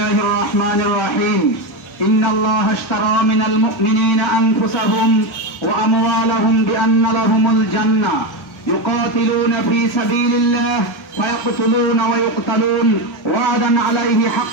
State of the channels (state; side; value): normal; both; correlation 0.13